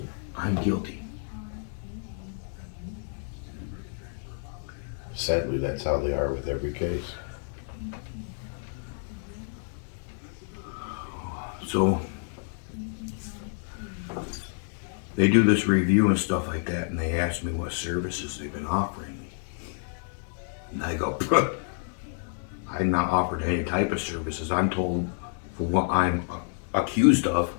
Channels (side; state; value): right; silent; 59 dB below the other